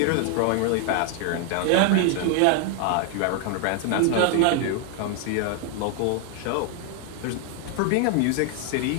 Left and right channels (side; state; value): both; different; correlation 0.00